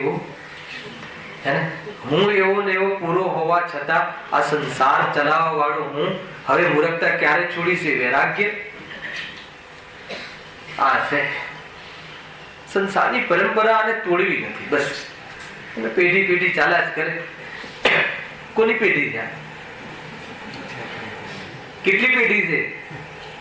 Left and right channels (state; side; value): identical; both; correlation 1.00